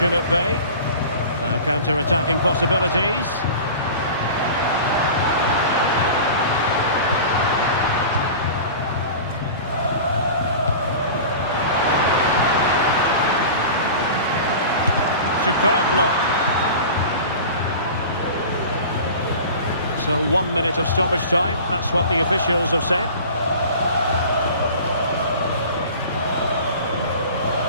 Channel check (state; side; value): inverted; both; correlation -0.37